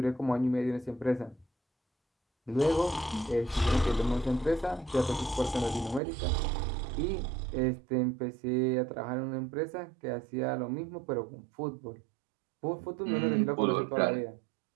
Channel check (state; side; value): drops out; left; at 6.0 s